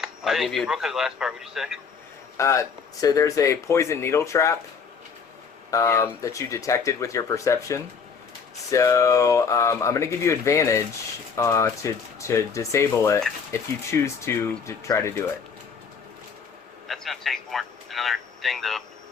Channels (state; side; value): quieter; right; 5.9 dB